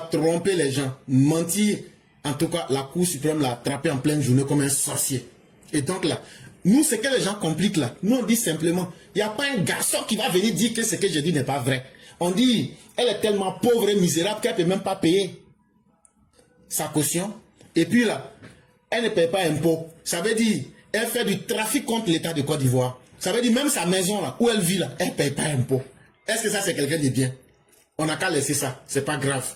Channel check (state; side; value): identical; both; correlation 1.00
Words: tromper les gens, mentir, en tout cas, la Cour suprême l'a attrapé en pleine journée comme un sorcier. Et donc là, nous, ce que les gens compliquent là, nous on dit simplement, il n'y a pas un garçon qui va venir dire que ce que je dis n'est pas vrai. On dit, elle est tellement pauvre et misérable qu'elle ne peut même pas payer sa caution. Et puis là, elle ne paye pas impôt. Ça veut dire, elle fait du trafic contre l'État de Côte d'Ivoire. Ça veut dire même sa maison là, où elle vit là, elle ne paye pas impôt. Est-ce que ça c'est quelqu'un de bien? On n'a qu'à laisser ça, c'est pas grave.